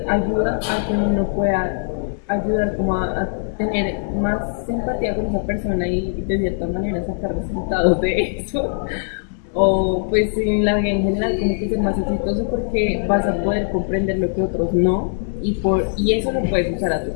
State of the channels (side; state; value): right; silent; 64 dB below the other